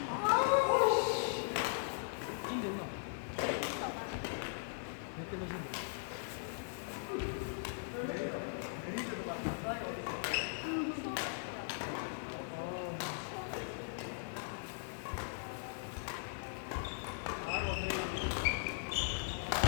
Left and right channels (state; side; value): silent; right; 52 dB below the other